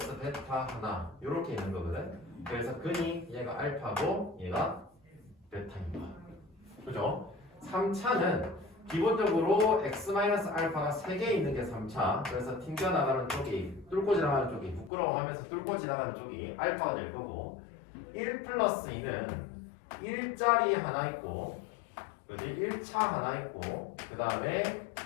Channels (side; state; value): right; drops out; at 14.9 s